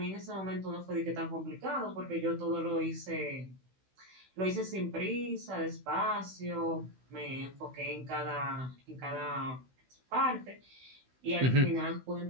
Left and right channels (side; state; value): left; late; 16 ms